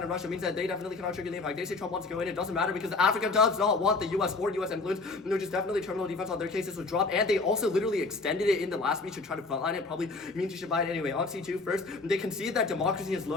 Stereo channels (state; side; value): quieter; right; 3.7 dB